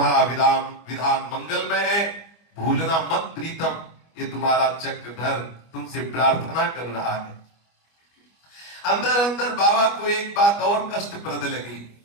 विधान मंगल में है, भूलना मत प्रीतम। ये तुम्हारा चक्रधर तुमसे प्रार्थना कर रहा है। अंदर अंदर बाबा को एक बात और कष्टप्रद लगी।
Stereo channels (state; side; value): late; right; 25 ms